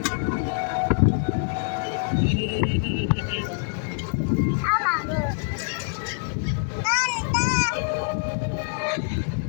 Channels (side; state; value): right; silent; digital silence